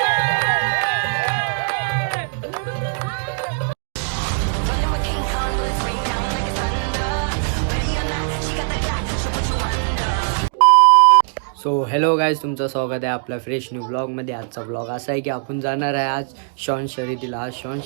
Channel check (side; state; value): left; silent; 61 dB below the other